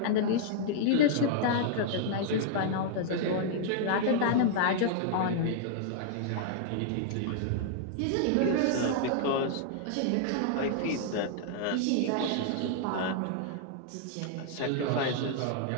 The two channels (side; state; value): both; different; correlation -0.01